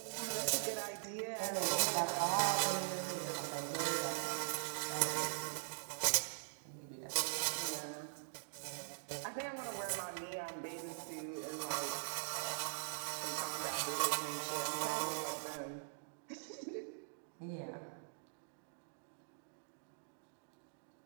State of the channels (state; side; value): silent; left; digital silence